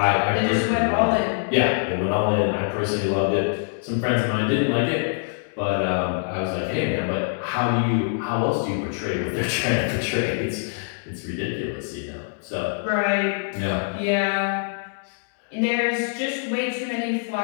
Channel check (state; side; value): silent; right; digital silence